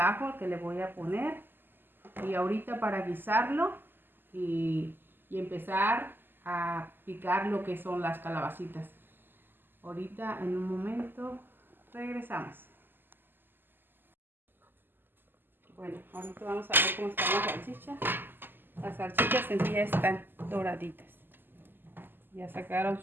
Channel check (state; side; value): late; left; 0.094 ms